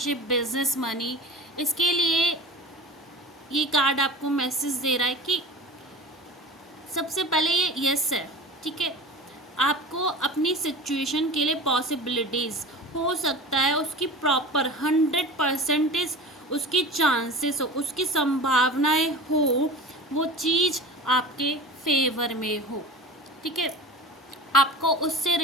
बिजनेस, मनी, इसके लिए ये कार्ड आपको मैसेज दे रहा है कि सबसे पहले ये यस है। ठीक है, आपको अपनी सिचुएशन के लिए पॉसिबिलिटीज़ हो सकता है उसकी प्रॉपर 100% उसकी चांसेस हो, उसकी संभावनाएं हो, वो चीज़ आपके फेवर में हो। ठीक है, आपको उससे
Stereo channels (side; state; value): both; normal; correlation 0.36